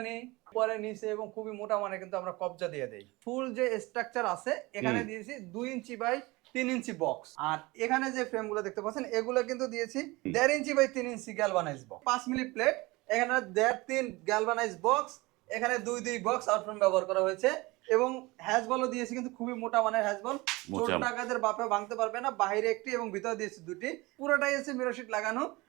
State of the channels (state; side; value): quieter; left; 22.5 dB